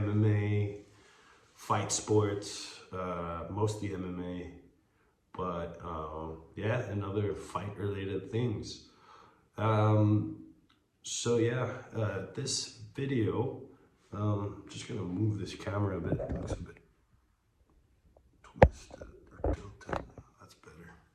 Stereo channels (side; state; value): both; identical; correlation 1.00